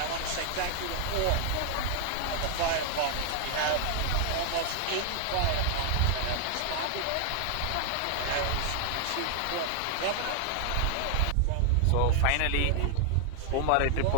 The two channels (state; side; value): different; both; correlation 0.00